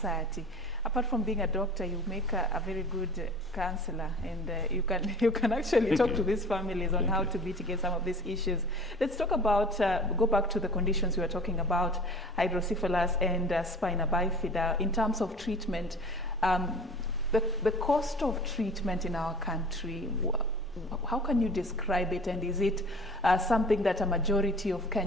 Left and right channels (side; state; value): both; normal; correlation 0.43